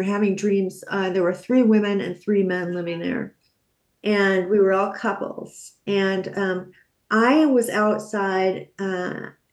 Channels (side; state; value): both; identical; correlation 1.00